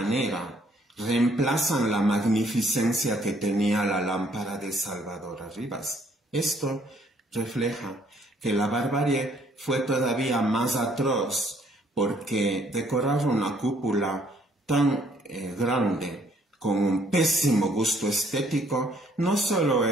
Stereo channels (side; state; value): both; normal; correlation 0.65